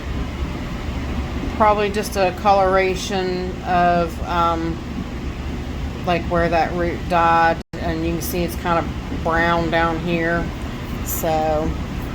probably just a coloration of like where that root died, and you can see it's kind of brown down here. So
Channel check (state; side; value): identical; both; correlation 1.00